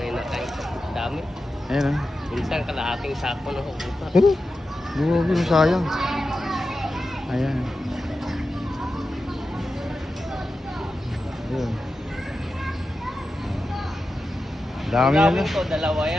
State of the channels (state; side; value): normal; both; correlation 0.91